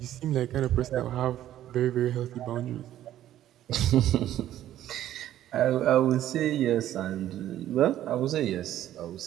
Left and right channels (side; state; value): left; quieter; 12.5 dB